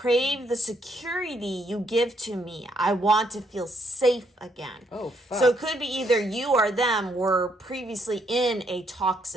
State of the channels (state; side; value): normal; both; correlation 0.72